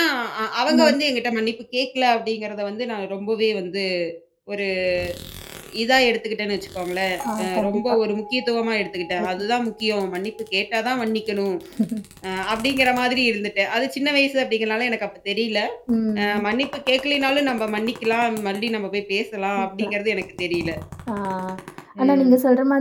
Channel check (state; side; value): identical; both; correlation 1.00